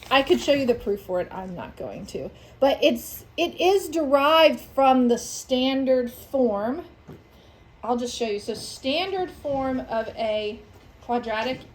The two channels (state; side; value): identical; both; correlation 1.00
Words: I could show you the proof for it, I'm not going to. But it is derived from the standard form. I'll just show you. So standard form of a quadratic